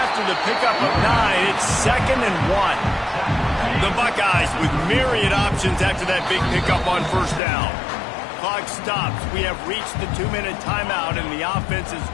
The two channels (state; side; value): drops out; right; at 7.4 s